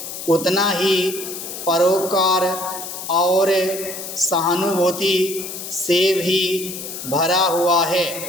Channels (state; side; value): noise; left; hiss, 9 dB below the sound